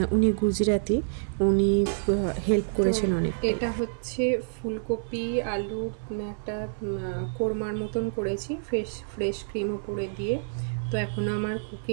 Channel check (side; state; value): left; silent; 60 dB below the other